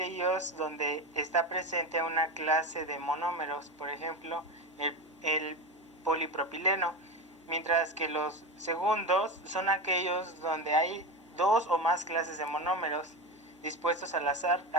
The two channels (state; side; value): normal; both; correlation 0.20